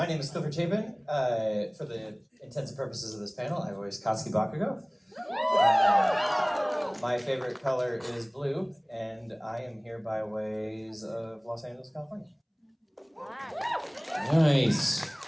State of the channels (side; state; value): both; identical; correlation 1.00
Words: name is Clifford Chapin. For the intents and purposes of this panel, I voice Katsuki Bakugo. My favorite color is blue, and I am here by ways of Los Angeles, California. Nice.